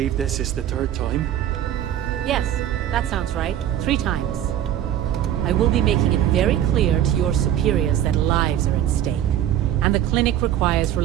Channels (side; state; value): left; quieter; 11.2 dB